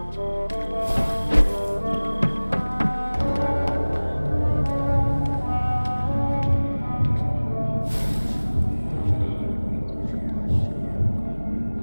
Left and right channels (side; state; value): both; inverted; correlation -1.00